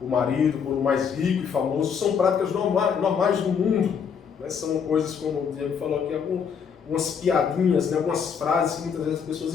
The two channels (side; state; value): right; quieter; 6.8 dB